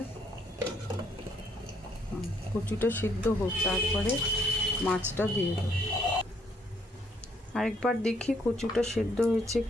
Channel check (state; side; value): normal; both; correlation 0.68